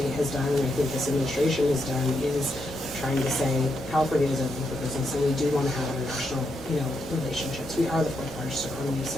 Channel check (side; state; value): both; normal; correlation 0.81